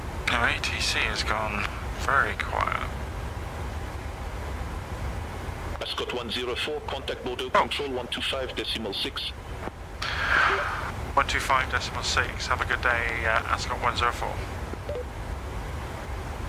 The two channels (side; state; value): both; identical; correlation 1.00